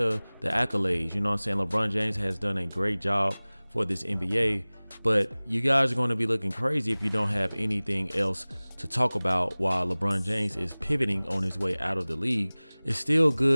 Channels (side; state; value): both; inverted; correlation -1.00